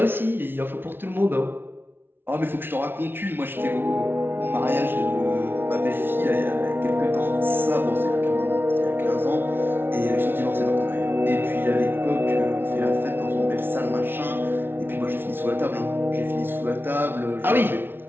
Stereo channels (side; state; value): left; late; 0.11 ms